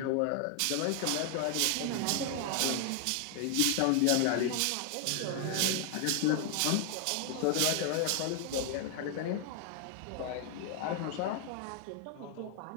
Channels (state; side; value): different; both; correlation 0.00